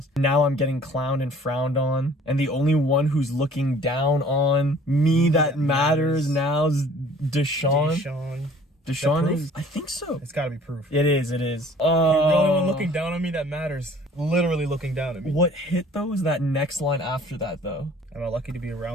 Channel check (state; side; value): normal; both; correlation 0.52